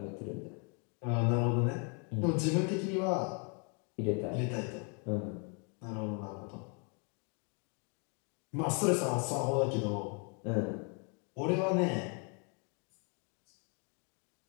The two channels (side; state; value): right; quieter; 36.7 dB